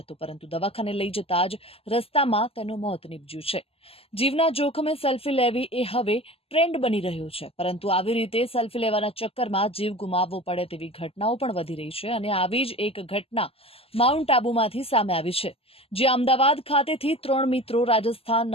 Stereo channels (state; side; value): late; right; 0.28 ms